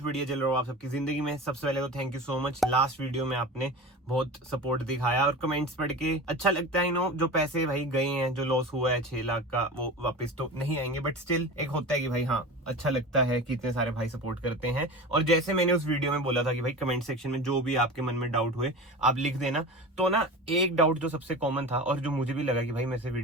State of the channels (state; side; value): normal; both; correlation 0.32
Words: बढ़िया चल रहा हो आप सबकी जिंदगी में। सबसे पहले तो thank you so much. Last video में आपने बहुत सपोर्ट दिखाया और कमेंट्स पढ़ के अच्छा लगता है। नो जो पैसे भाई गए हैं, जो लॉस हुआ है 6 लाख का, वो वापस तो नहीं आएंगे, बट स्टिल एक होता है कि भाई हाँ अच्छा लगता है कि इतने सारे भाई सपोर्ट करते हैं। और जैसे मैंने उस वीडियो में बोला था कि भाई कमेंट सेक्शन में जो भी आपके मन में डाउट हुए आप लिख देना। तो ना एक डाउट जो सबसे कॉमन था और जो मुझे भी लगा कि भाई मेरे से